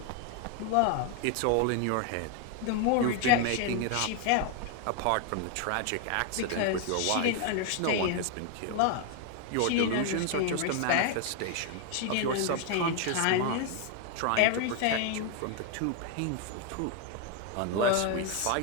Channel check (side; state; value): both; different; correlation 0.01